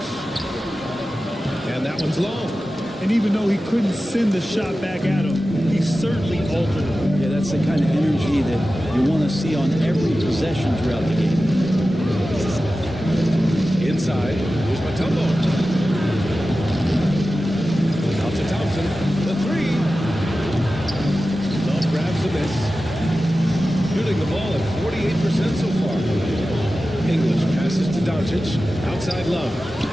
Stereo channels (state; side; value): normal; both; correlation 0.94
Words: And that one's long. And even though he couldn't send the shot back at him, he certainly altered it. Yeah, that's the kind of energy that you want to see on every possession throughout the game. Inside. Here's Mutombo. Out to Thompson. The three. Love grabs the miss. Shooting the ball at 48% so far. English passes to Doncic. Outside Love.